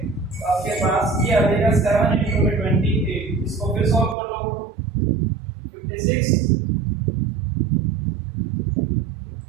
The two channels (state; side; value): drops out; left; at 4.2 s